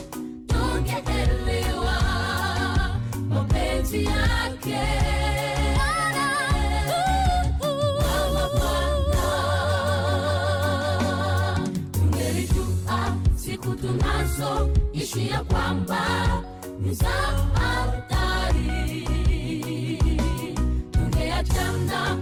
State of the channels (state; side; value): identical; both; correlation 1.00